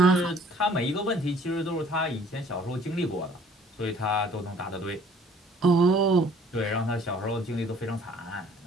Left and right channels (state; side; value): normal; both; correlation 0.56